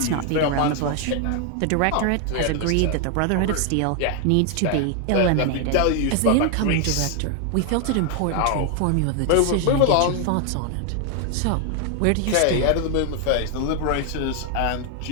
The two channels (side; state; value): both; different; correlation 0.00